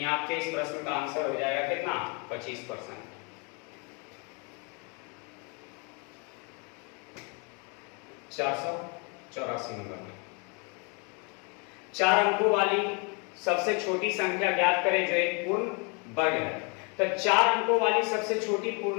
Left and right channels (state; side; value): quieter; right; 33.8 dB